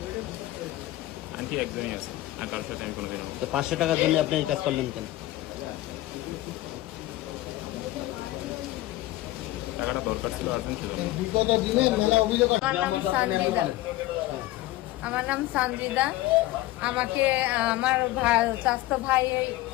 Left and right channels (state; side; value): quieter; right; 16.9 dB